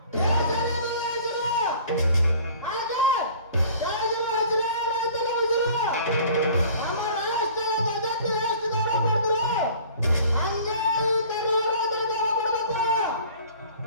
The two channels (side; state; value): both; inverted; correlation -0.48